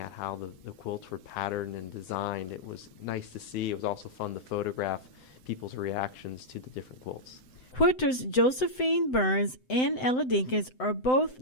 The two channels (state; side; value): late; right; 7.8 ms